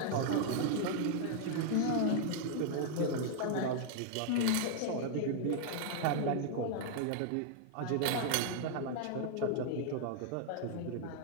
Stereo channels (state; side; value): different; both; correlation 0.00